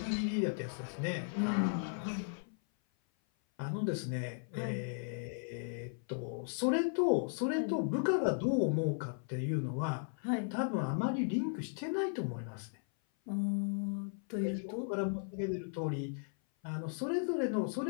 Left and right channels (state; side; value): silent; right; 54 dB below the other